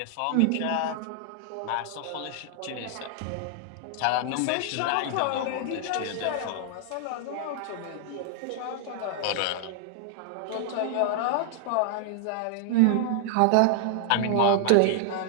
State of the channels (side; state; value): both; different; correlation 0.00